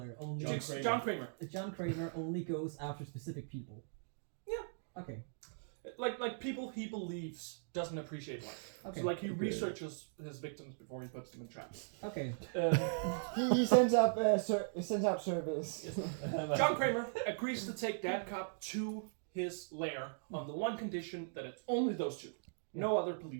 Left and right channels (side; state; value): left; silent; digital silence